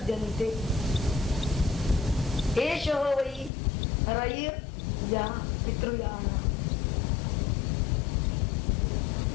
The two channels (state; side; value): drops out; right; at 3.5 s